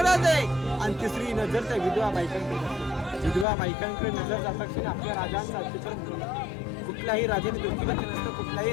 आणि तिसरी नजर त्या विधवा बायकांकडे. विधवा बायकांकडे नजर जाता क्षणी आपल्या राजांचा अत्याचार कुठल्याही राजाने डोक्यात नसतं, कुठल्याही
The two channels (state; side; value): drops out; right; at 3.5 s